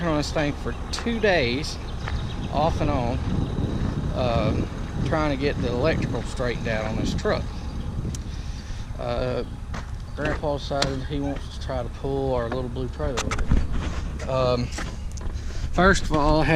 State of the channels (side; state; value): both; identical; correlation 1.00